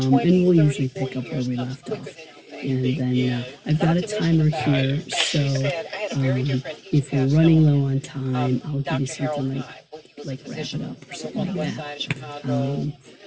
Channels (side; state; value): both; identical; correlation 1.00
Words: we'll usually pick up where we left off. And then I've got a timer here, so if we're running low on time, I'll give you something like wrap it up or something like that.